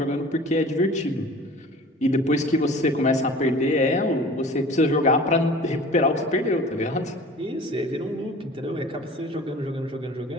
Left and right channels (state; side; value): normal; both; correlation 0.43